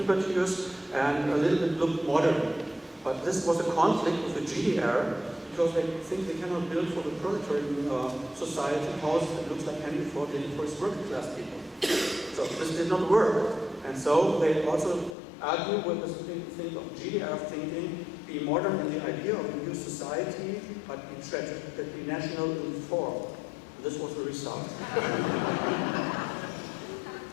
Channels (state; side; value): drops out; right; at 15.2 s